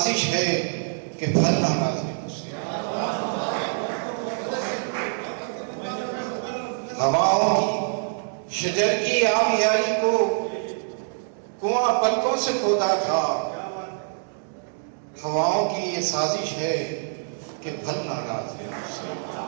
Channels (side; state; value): left; silent; digital silence